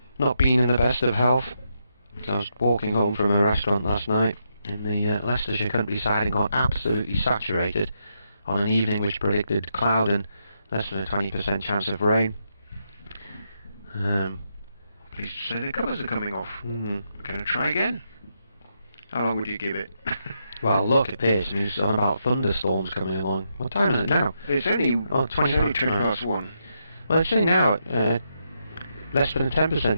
not been in the best of health. I was walking home from a restaurant last night in the Leicestershire countryside and got absolutely saturated on an evening which predicted cloud and less than a 20% chance of rain. Pleased to say the colours are coming off. Going to try again. How long would you give it? Well, look at this. It's on about thunderstorms coming along. What time is it now? It's only 20 past 1. Well, it's saying now less than a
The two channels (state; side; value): inverted; both; correlation -0.81